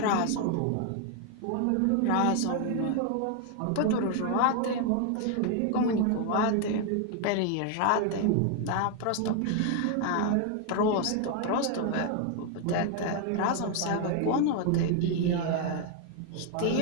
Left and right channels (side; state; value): both; different; correlation 0.00